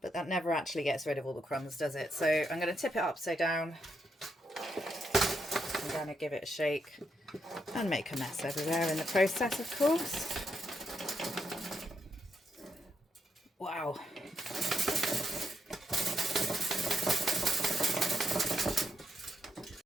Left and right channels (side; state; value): both; normal; correlation 0.80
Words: But that never actually gets rid of all the crumbs, does it? So I'm going to tip it upside down. I'm going to give it a shake and make a mess everywhere in the process, of course. Wow.